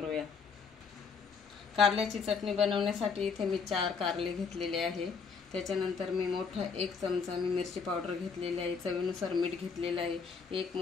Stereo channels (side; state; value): right; quieter; 5.5 dB